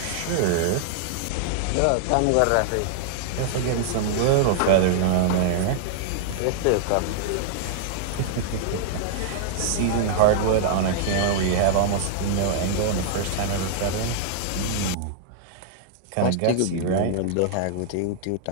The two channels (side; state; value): both; different; correlation -0.01